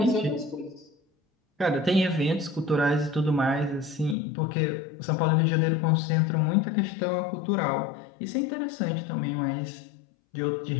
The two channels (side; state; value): right; drops out; at 4.2 s